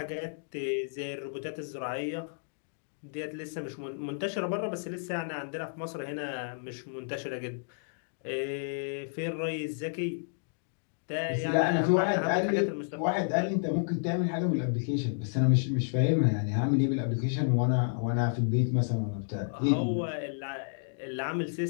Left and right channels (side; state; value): right; silent; digital silence